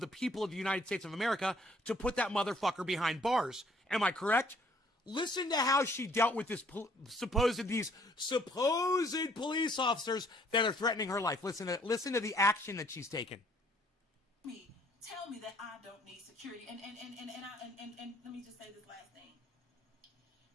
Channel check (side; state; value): both; normal; correlation 0.62